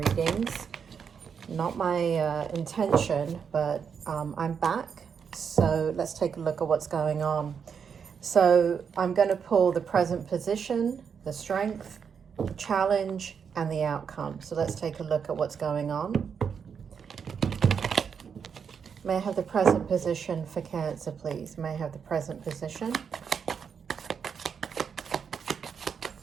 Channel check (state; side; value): quieter; left; 6.7 dB